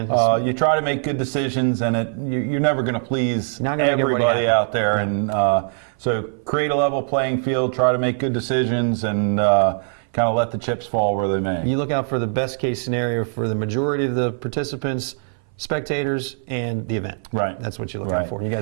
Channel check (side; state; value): left; silent; 59 dB below the other